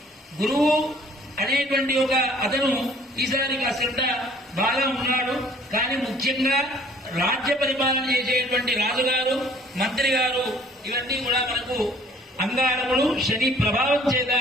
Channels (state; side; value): normal; both; correlation 0.55